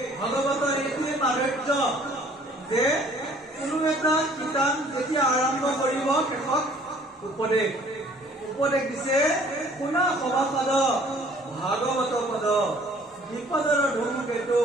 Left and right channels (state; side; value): normal; both; correlation 0.56